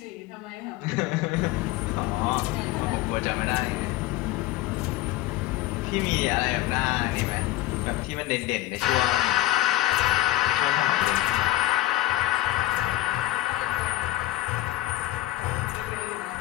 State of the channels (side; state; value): right; quieter; 15.9 dB